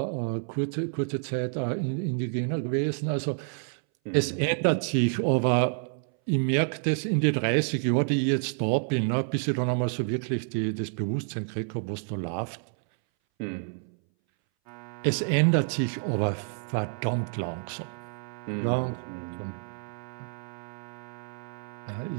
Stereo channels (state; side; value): silent; left; 59 dB below the other